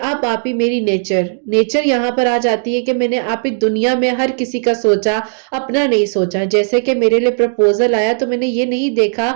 اب آپ ہی میری نیچر یہاں پر آ جاتی ہے کہ میں نے آپ ہی دنیا میں ہر کسی کا سوچا، اپنا نہیں سوچا. جیسے کہ میرے لیے پرپوزل آیا تو میں نے یہ نہیں دیکھا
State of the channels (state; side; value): silent; left; digital silence